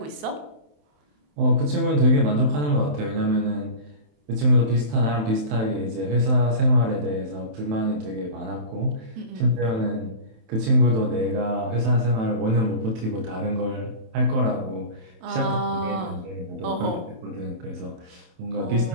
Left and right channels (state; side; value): late; left; 27 ms